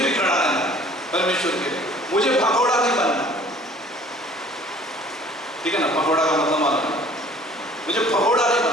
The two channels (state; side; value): normal; both; correlation 0.52